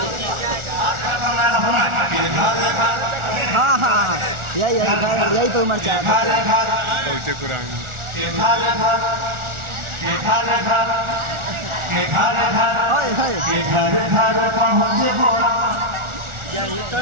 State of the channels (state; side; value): late; left; 1.4 ms